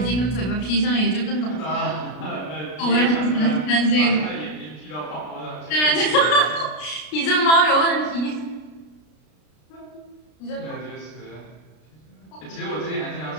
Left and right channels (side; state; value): right; late; 33 ms